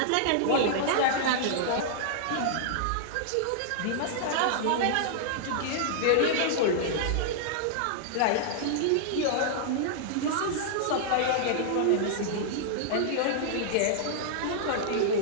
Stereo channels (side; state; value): both; different; correlation -0.01